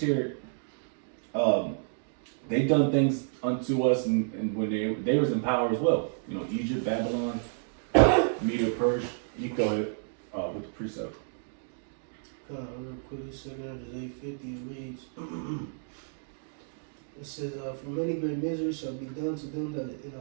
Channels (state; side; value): silent; left; digital silence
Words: They done things unto us, and when they was in power as well. You know, Egypt, Babylon, Media, Persia. You go ahead with the precept. Real quick, second Ezra 8:50 it reads. It says, for many great miseries shall be done to them that in